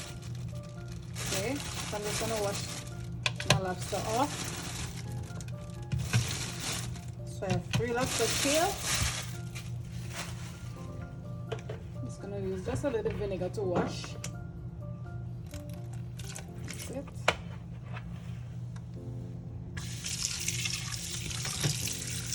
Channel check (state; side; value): identical; both; correlation 1.00